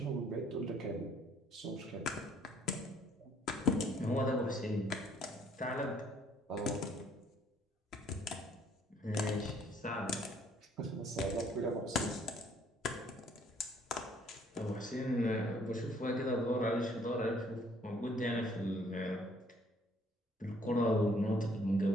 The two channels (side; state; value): both; normal; correlation 0.63